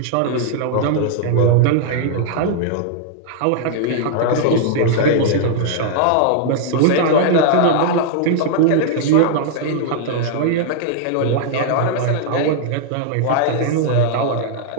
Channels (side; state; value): both; different; correlation -0.01